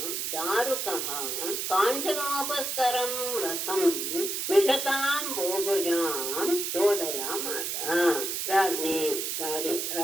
ದಾರುಕಃ ಕಾಂಚನೋಪಸ್ಕರಂ ರಥಂ ವಿಶತಾಂ ಬೋಭುಜಾಂ ಚೋದಯಾಮಾಸ.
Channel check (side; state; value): right; noise; hiss, 2 dB below the sound